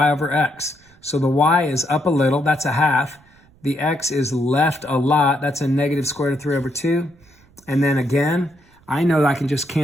over x. So the y is up a little, that's a half. The x is left a lot, that's a negative square root of 3 over 2. And then again, I know that I can just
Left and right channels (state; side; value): noise; right; rumble, 29 dB below the sound